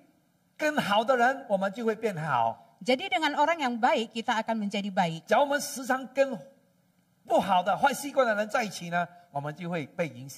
跟好的人，我们就会变好； Jadi dengan orang yang baik kita akan menjadi baik. 假如我们时常跟不好的坏习惯的人在一起呢，我们就会被影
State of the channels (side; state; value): both; identical; correlation 1.00